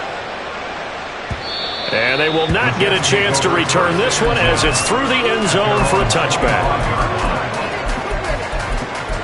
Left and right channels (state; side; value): identical; both; correlation 1.00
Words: And they will not get a chance to return this one as it's through the end zone for a touchback.